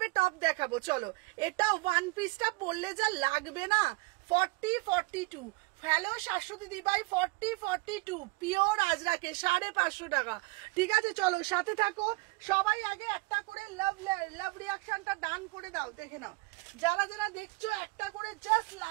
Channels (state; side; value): quieter; left; 25.6 dB